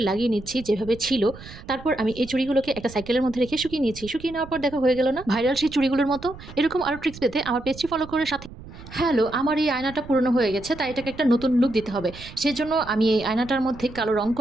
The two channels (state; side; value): noise; right; rumble, 16 dB below the sound